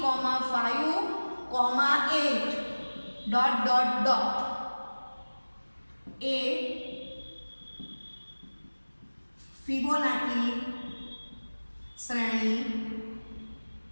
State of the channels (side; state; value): both; inverted; correlation -1.00